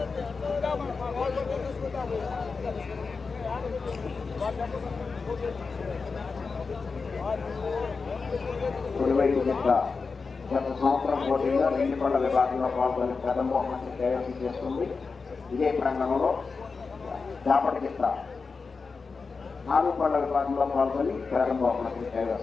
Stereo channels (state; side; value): quieter; right; 4.6 dB